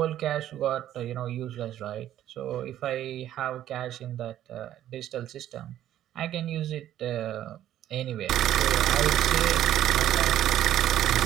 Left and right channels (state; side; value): quieter; left; 12.1 dB